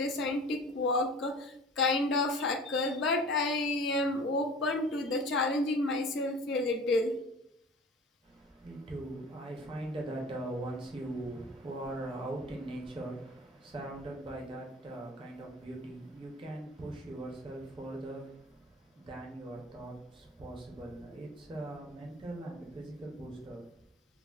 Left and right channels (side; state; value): both; normal; correlation 0.41